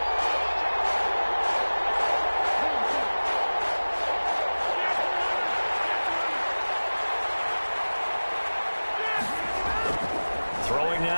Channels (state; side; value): inverted; both; correlation -1.00